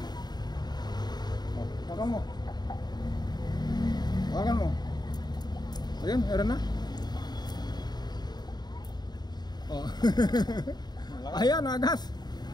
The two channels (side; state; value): right; late; 0.20 ms